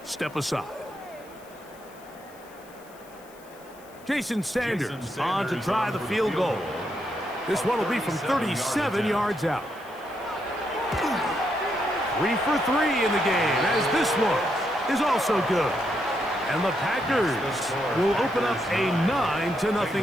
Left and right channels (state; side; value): noise; left; hiss, 25 dB below the sound